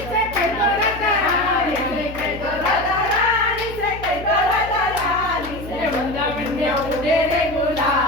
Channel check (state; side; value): noise; left; hum, 13 dB below the sound